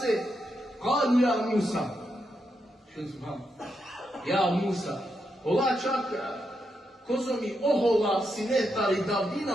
kalu ja Musa. Što znam? Ja Musa. Allah čak, kozo mi ohola sinetari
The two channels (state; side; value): normal; both; correlation 0.83